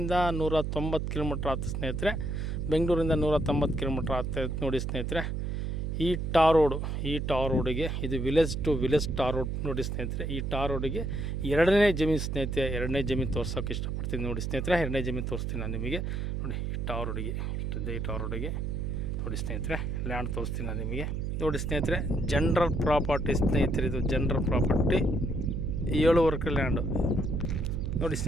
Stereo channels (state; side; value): noise; right; hum, 2 dB below the sound